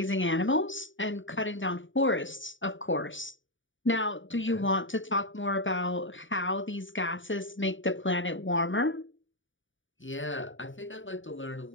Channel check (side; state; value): right; late; 0.56 ms